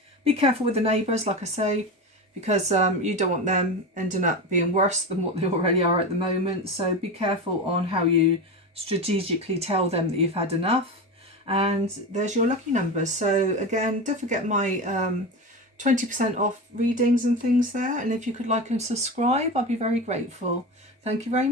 Be careful with the neighbours, like I say, because you don't want them ending up being worse than what they already are at the moment. So be careful on how you strategically tell them that you've had enough. And there's your lucky numbers. So again, don't forget my 20% off readings and things there. And if you could like and subscribe, I'd be very grateful. Thank you very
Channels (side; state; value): both; normal; correlation 0.23